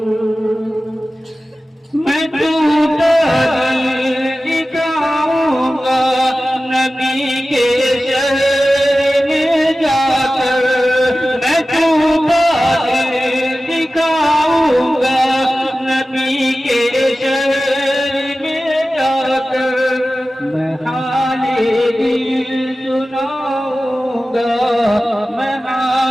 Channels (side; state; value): both; normal; correlation 0.95